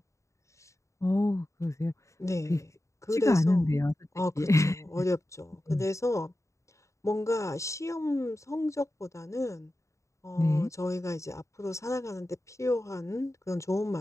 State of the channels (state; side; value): late; right; 0.15 ms